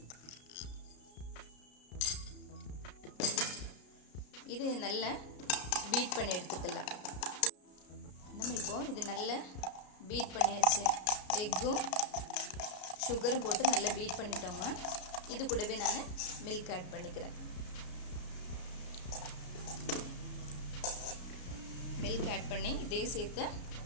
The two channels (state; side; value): late; right; 33 ms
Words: இது நல்லா பீட் பண்ணி எடுத்துக்கலாம். நம்ம இப்போ இது நல்லா பீட் பண்ணியாச்சு. எக்கும் சுகரும் போட்டு நல்லா பீட் பண்ணிட்டோங்க. இது கூடவே நான் மில்க் ஆட் பண்ணிக்கிறேன். மில்க் ஆட் பண்ணி இதையும் சேர்த்து